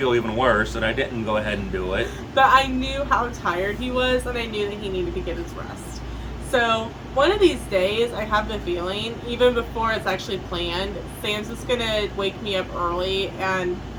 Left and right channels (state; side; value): identical; both; correlation 1.00